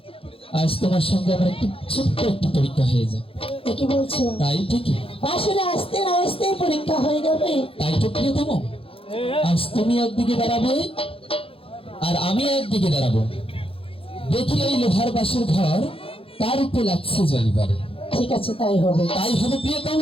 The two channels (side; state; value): right; late; 0.27 ms